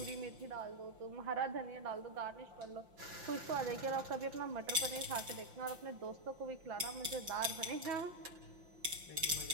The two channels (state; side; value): late; left; 5.5 ms